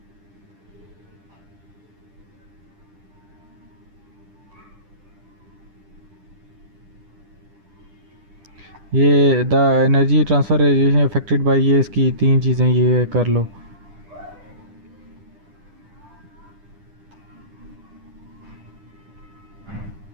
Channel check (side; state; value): left; late; 10 ms